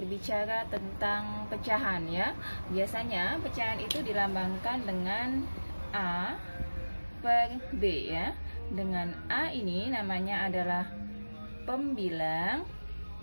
tentang pecahan ya. Biasanya pecahan itu dilambangkan dengan A per B ya. Dengan A ini namanya adalah pembilang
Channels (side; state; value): both; inverted; correlation -1.00